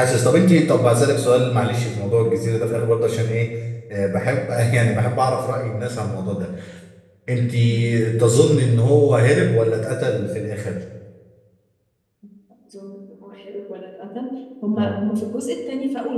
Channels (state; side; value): identical; both; correlation 1.00